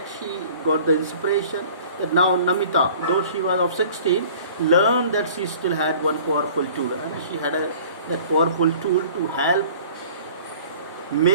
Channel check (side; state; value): both; inverted; correlation -0.48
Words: she got the inspiration that now Namita, though she was of 16, learned that she still had one powerful tool. She had that powerful tool to help